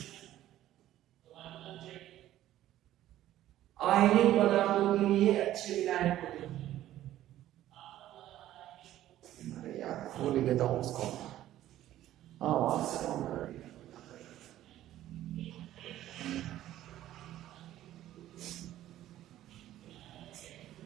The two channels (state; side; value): quieter; left; 13.4 dB